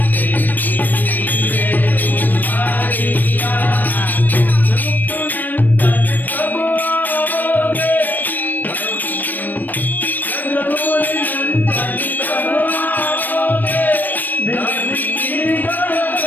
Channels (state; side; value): late; right; 0.088 ms